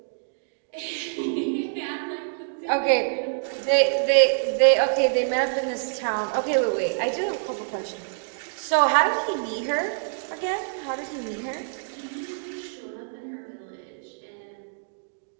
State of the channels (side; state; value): left; silent; digital silence